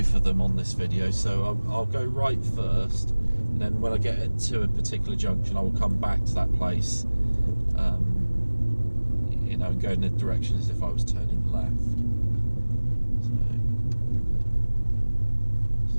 of them on this video, so I'll go right first, and then when I get to a particular junction I will come back to that place, you know, go in the direction as if I was turning left.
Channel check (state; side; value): inverted; both; correlation -1.00